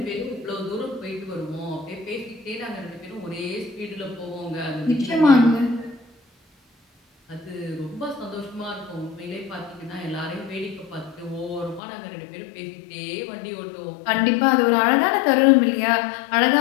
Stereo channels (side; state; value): right; drops out; at 11.8 s